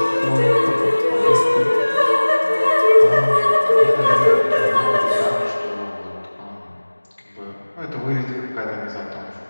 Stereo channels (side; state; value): both; inverted; correlation -1.00